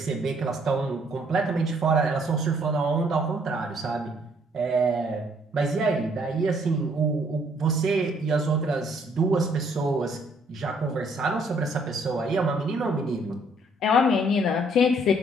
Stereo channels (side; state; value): both; normal; correlation 0.65